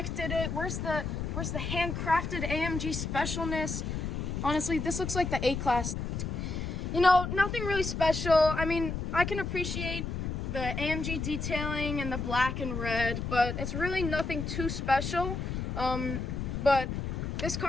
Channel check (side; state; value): left; noise; rumble, 3 dB below the sound